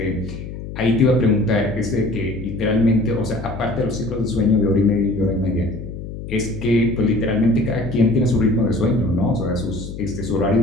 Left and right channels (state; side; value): noise; left; hum, 9 dB below the sound